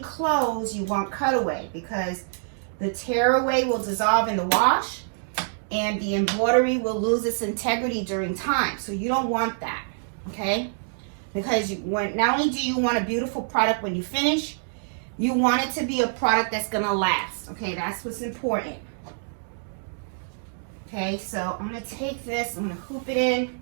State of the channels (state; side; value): silent; left; digital silence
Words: you want cutaway because the tearaway will dissolve in the wash and the embroidery will lose its integrity during time. So you don't want that, okay? Because not only do you want a beautiful product when you finish, you want it to be a product that's going to last, okay? That's what's important. Okay, so I'm going to take this, I'm going to hoop it in.